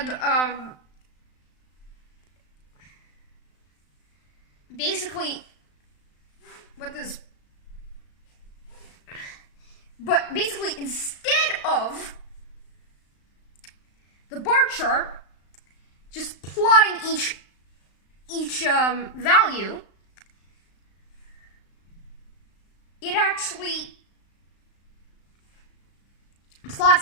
basically what this. But basically, instead of the bar chart, just plotting each value, it actually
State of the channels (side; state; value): right; late; 35 ms